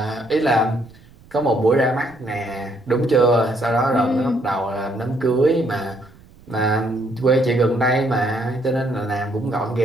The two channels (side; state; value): right; noise; rumble, 25 dB below the sound